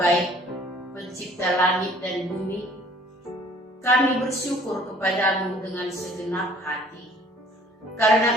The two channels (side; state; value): both; normal; correlation 0.55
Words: Baik, pencipta langit dan bumi, kami bersyukur kepadamu dengan segenap hati,